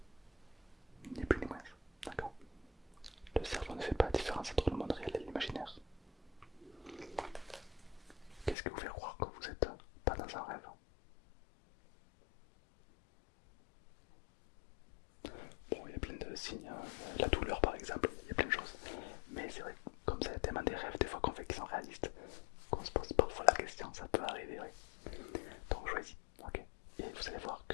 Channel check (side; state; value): right; drops out; at 8.6 s